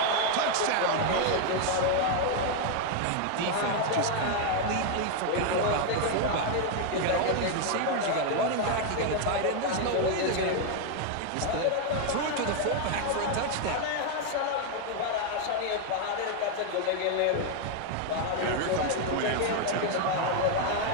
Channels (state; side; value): different; both; correlation 0.01